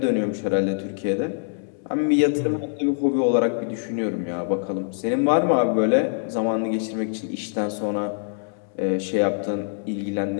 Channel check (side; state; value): right; silent; 62 dB below the other